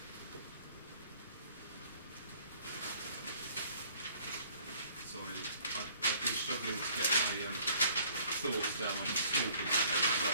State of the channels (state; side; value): inverted; both; correlation -0.58